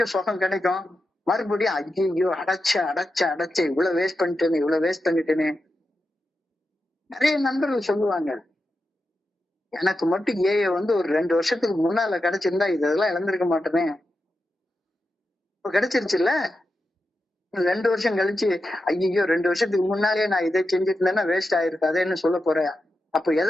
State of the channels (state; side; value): normal; both; correlation 0.89